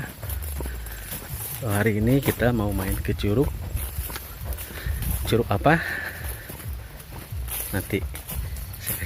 So, hari ini kita mau main ke curug. Curug apa? Nanti saya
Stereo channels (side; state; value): both; identical; correlation 1.00